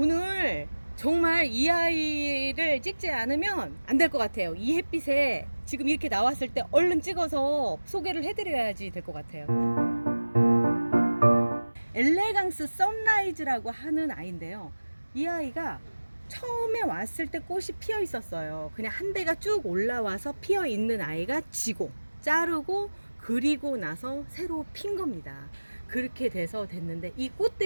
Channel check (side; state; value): both; inverted; correlation -1.00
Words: 오늘 정말 이 아이를 찍지 않으면 안 될 것 같아요. 이 햇빛에 지금 이렇게 나왔을 때 얼른 찍어서 소개를 해드려야지 될 것 같아요. 엘레강스 선라이즈라고 하는 아이인데요. 이 아이가 처음에 왔을 때 꽃이 피어 있었어요. 그냥 한 대가 쭉 올라와서 피어 있는 아이가 지고 자르고 그리고 나서 새로 핀 겁니다. 그렇게 돼서 됐는데 이